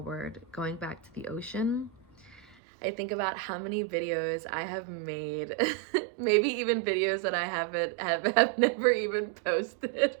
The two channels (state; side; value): drops out; left; at 2.6 s